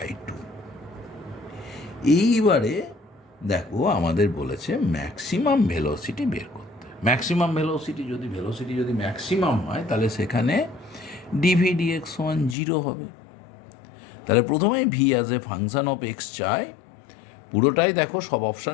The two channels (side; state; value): right; drops out; at 12.6 s